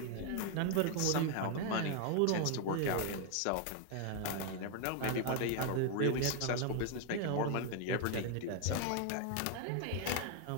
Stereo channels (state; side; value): different; both; correlation 0.01